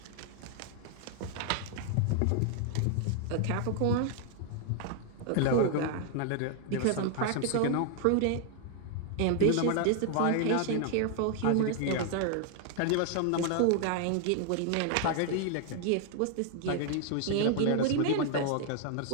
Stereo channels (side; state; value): both; different; correlation 0.00